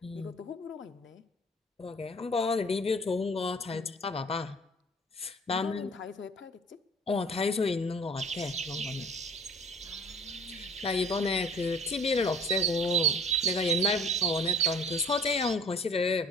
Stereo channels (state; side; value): normal; both; correlation 0.50